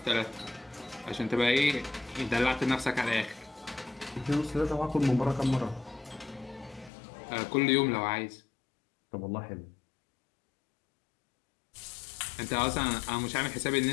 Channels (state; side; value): drops out; right; at 6.9 s